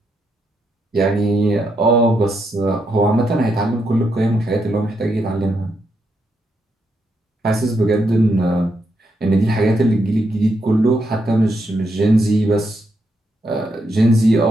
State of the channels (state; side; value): normal; both; correlation 0.80